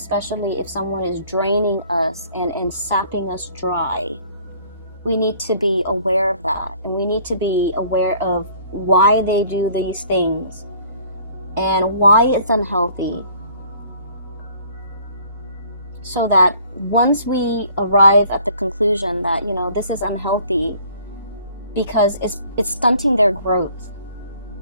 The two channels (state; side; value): inverted; both; correlation -0.56